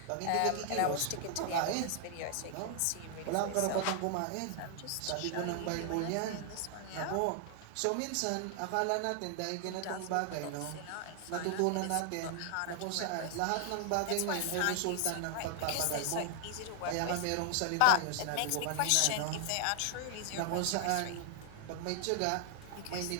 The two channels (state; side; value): different; both; correlation 0.00